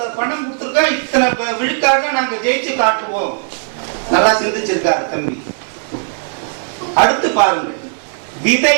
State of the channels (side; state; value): left; silent; digital silence